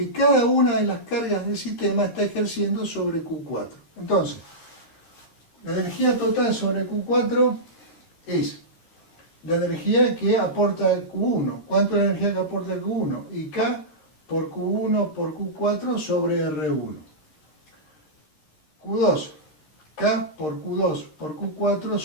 cada una de las cargas del sistema está ejerciendo sobre Q4. Entonces, la energía total sobre Q4 es la energía que aporta Q1. ¿Cuánto es la energía que aporta Q1? Y K por Q1 por Q4 sobre R1. Q2. K por Q2 por Q4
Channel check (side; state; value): right; late; 13 ms